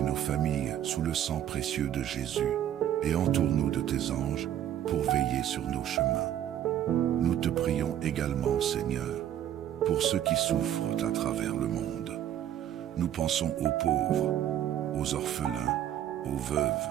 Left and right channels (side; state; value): left; quieter; 11.1 dB